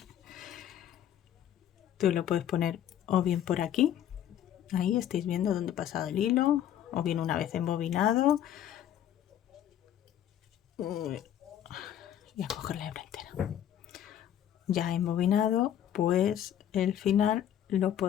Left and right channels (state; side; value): quieter; right; 10.6 dB